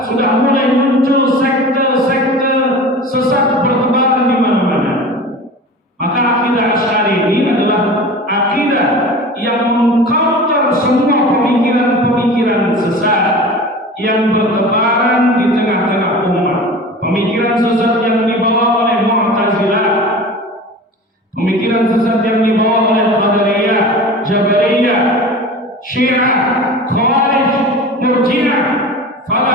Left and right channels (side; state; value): both; normal; correlation 0.36